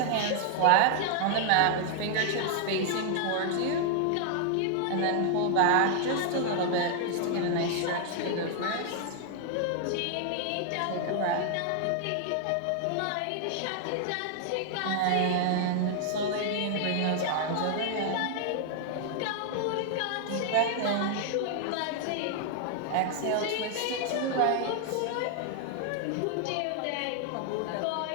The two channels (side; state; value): both; different; correlation 0.00